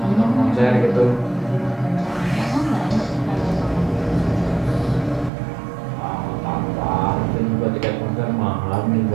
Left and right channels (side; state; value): left; drops out; at 5.3 s